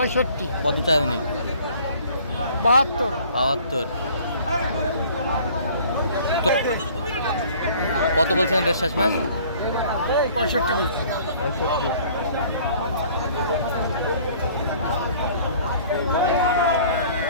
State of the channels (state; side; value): inverted; both; correlation -0.53